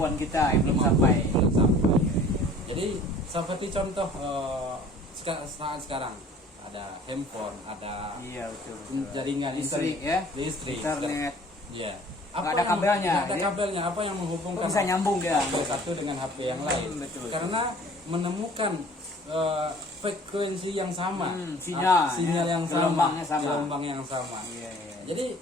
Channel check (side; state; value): both; normal; correlation 0.50